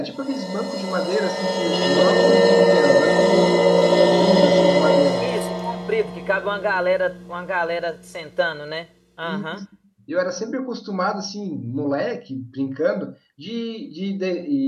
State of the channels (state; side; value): identical; both; correlation 1.00